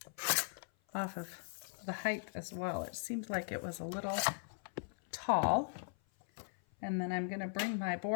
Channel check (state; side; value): silent; right; 52 dB below the other